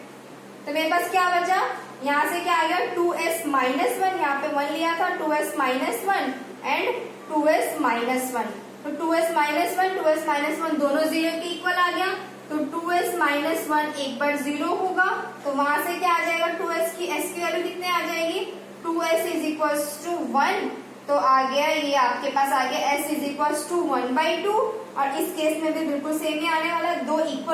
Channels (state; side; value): identical; both; correlation 1.00